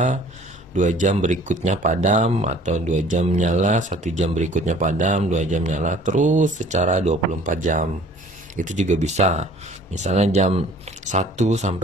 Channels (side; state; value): both; normal; correlation 0.52